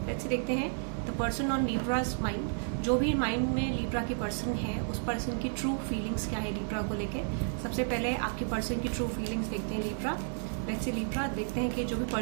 Let's देखते हैं द पर्सन ऑन लिब्राज माइंड. जो भी माइंड में लिब्रा की पर्सन है उस पर्सन की ट्रू फीलिंग्स क्या है लिब्रा को लेके. सबसे पहले आपके पर्सन की ट्रू फीलिंग्स देखते हैं लिब्रा. लेट्स सी लिब्रा, देखते हैं कि जो भी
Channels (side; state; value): left; silent; digital silence